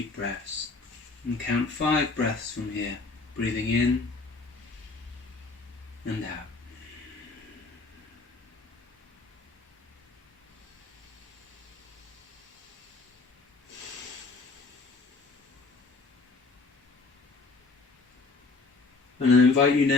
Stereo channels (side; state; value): right; quieter; 3.9 dB